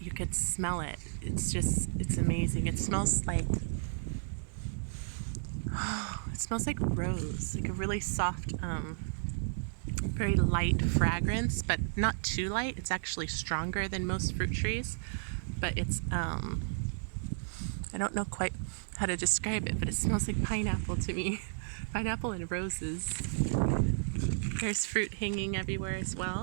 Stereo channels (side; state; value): left; silent; digital silence